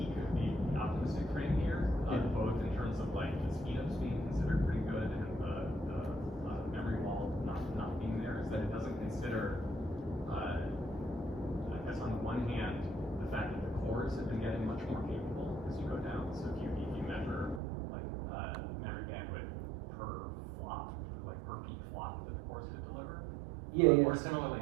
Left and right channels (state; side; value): drops out; left; at 17.6 s